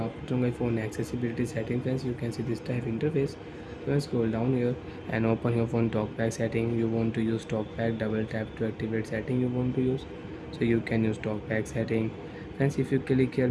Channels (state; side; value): identical; both; correlation 1.00